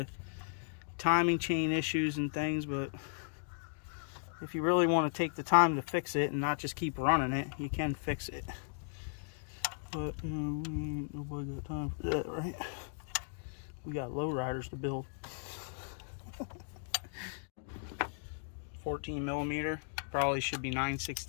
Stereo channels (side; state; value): right; silent; digital silence